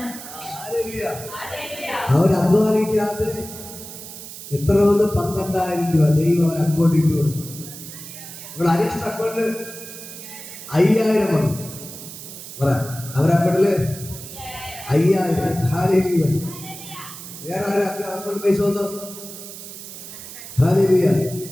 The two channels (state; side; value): noise; right; hiss, 13 dB below the sound